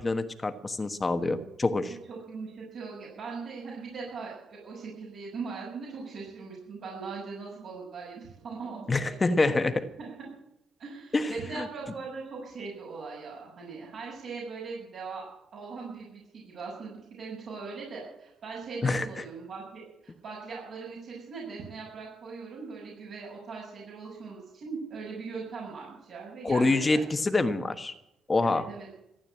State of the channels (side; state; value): both; normal; correlation 0.89